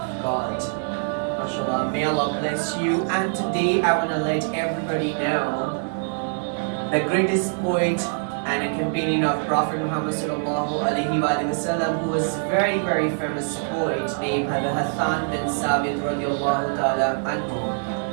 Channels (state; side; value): silent; left; 63 dB below the other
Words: God. MashaAllah, may Allah bless you. And today I want to let everybody know the greatest poet and a companion of Prophet Muhammad sallallahu alaihi wasallam, who was very, very famous poet named Hassan bin Sabit radiallahu ta'ala anhu.